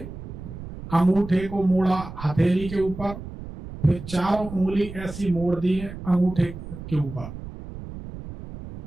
अंगूठे को मोड़ा हथेली के ऊपर, फिर 4 उंगली ऐसी मोड़ दी है अंगूठे के ऊपर,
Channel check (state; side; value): noise; right; rumble, 11 dB below the sound